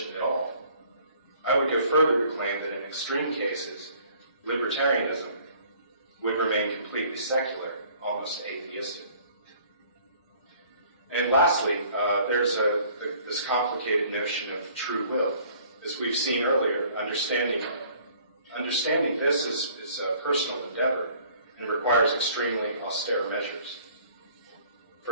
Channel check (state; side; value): inverted; both; correlation -0.56